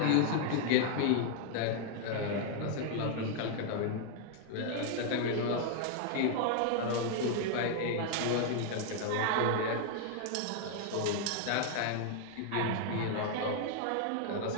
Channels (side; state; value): both; different; correlation 0.00